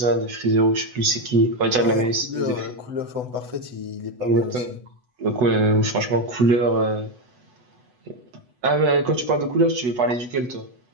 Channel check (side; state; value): left; late; 8.0 ms